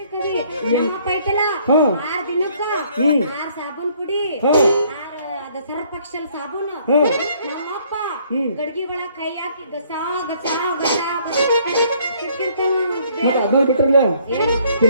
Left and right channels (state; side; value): inverted; both; correlation -0.63